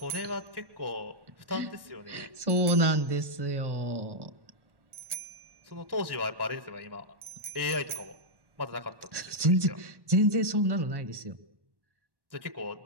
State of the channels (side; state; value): left; late; 1.1 ms